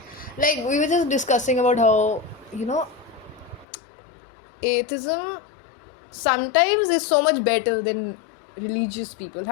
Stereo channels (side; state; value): right; drops out; at 3.7 s